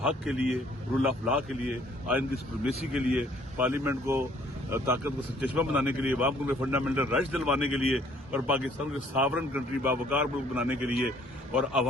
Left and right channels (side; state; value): both; normal; correlation 0.60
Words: کے لیے، رول آف لا کے لیے، آئین کی سپریمیسی کے لیے، پارلیمنٹ کو طاقت کو چشمہ بنانے کے لیے، عوام کو فنڈامنٹل رائٹس دلوانے کے لیے، اور پاکستان کو ساورن کنٹری باوقار ملک بنانے کے لیے، اور